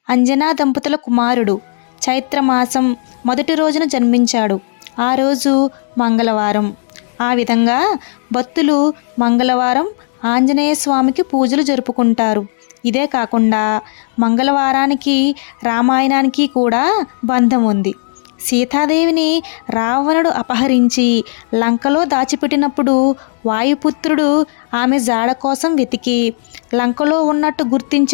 అంజనా దంపతుల కుమారుడు. చైత్రమాసం మొదటి రోజున జన్మించాడు. ఆ రోజు మంగళవారం. ఆ విధంగా భక్తులు మంగళవారం ఆంజనేయ స్వామికి పూజలు జరుపుకుంటారు. ఇదే కాకుండా మంగళవారానికి రామాయణానికి కూడా బంధం ఉంది. సీతాదేవిని రావణుడు అపహరించి లంకలో దాచిపెట్టినప్పుడు వాయుపుత్రుడు ఆమె జాడ కోసం వెతికి లంకలో ఉన్నట్టు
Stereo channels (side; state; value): right; silent; digital silence